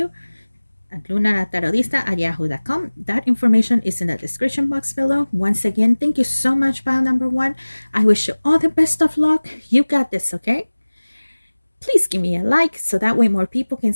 at lunalatarotista@yahoo.com. That information is in the description box below. Once again, thank you so much, pile number 1. I wish you all the best of luck. You got this, okay? Please give me a like so that way more people can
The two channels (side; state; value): both; inverted; correlation -1.00